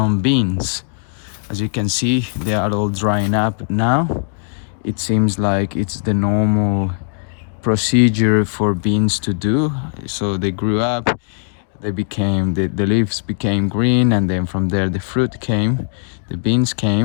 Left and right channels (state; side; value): silent; right; 56 dB below the other